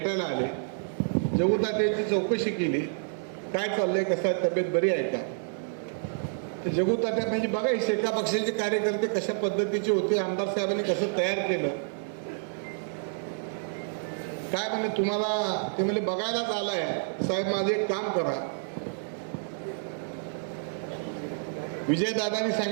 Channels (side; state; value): left; silent; digital silence